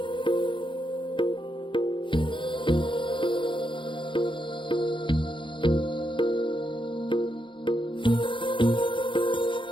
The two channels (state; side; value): late; right; 0.24 ms